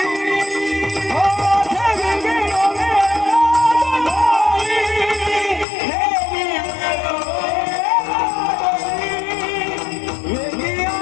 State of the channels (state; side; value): drops out; right; at 5.7 s